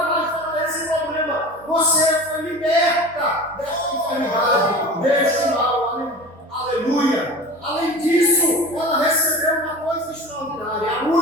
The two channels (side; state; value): both; normal; correlation 0.36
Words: mais vai ter esse problema. Você foi liberta dessa enfermidade, deste mal. Aleluia. Além disso, ela recebeu uma coisa extraordinária. A